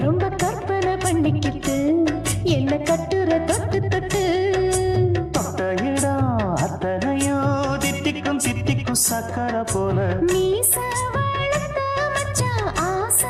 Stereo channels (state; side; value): identical; both; correlation 1.00